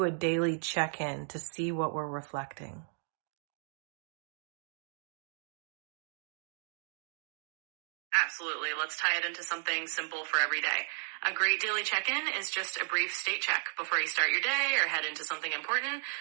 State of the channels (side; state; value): left; silent; 55 dB below the other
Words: a daily check-in to see what we're reflecting? Absolutely. Let's tie it into something simple for every day. A great daily check-in is just a brief state check before you start your day or head into something important.